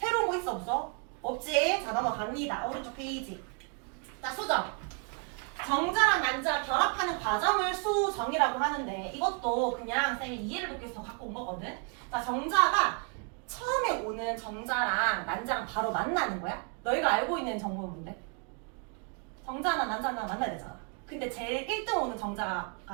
거 있어 없어? 없지. 자, 넘어갑니다. 오른쪽 페이지. 자, 수정. 정자랑 난자가 결합하는 과정을 수정이라고 하는데, 이것도 그냥 쌤이 이해를 돕기 위해서 갖고 온 거거든. 자, 정자가 처음에 오는 정자랑 난자랑 바로 만나는 거야. 너희가 알고 있는 정보는 뭔데? 정자나 난자나 만나야 되잖아. 근데 제일 1등 오는 정자가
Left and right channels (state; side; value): quieter; left; 38.6 dB